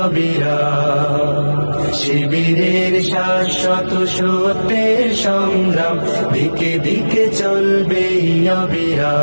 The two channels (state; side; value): inverted; both; correlation -1.00